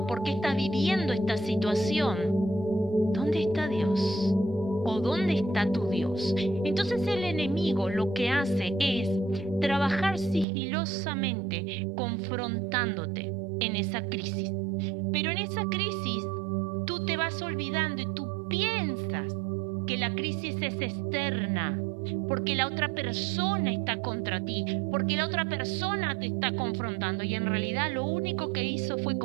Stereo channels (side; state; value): left; drops out; at 10.5 s